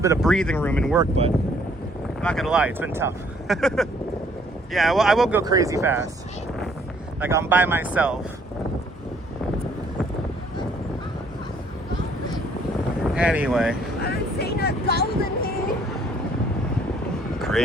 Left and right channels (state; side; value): normal; both; correlation 0.62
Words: bit of breathing room in work, but I'm not gonna lie, it's been tough. Yeah, well, I won't go crazy fast. Like I'm by myself. Anyway. I'm seeing a golden here.